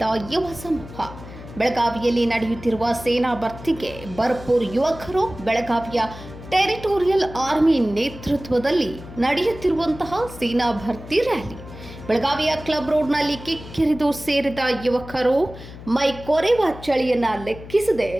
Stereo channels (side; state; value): left; noise; hum, 15 dB below the sound